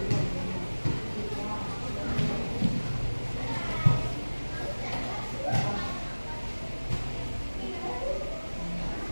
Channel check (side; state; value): both; inverted; correlation -1.00